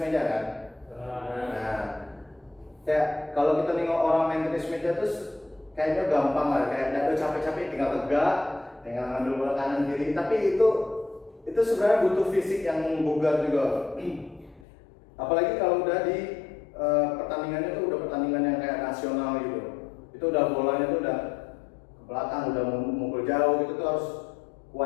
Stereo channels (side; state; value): right; drops out; at 14.7 s